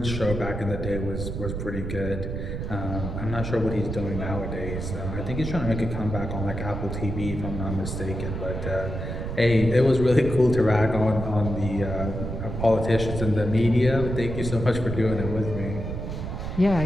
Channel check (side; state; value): right; noise; rumble, 5 dB below the sound